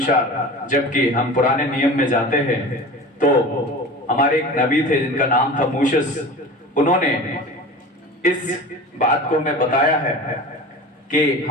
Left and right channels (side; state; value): both; normal; correlation 0.35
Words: जबकि हम पुराने नियम में जाते हैं, तो हमारे एक नबी थे जिनका नाम था मूसेस। उन्होंने इस बात को हमें बताया है कि